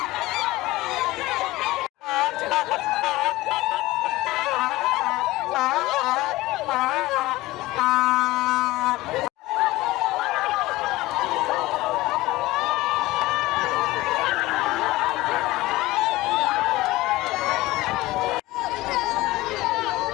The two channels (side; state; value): right; quieter; 18.7 dB